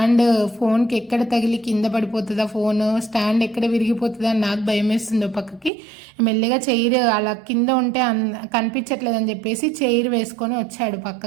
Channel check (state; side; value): drops out; left; at 5.7 s